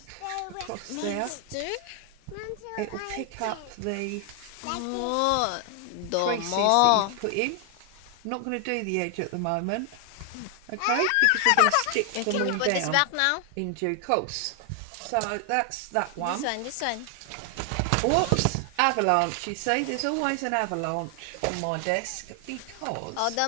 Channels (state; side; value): different; both; correlation 0.00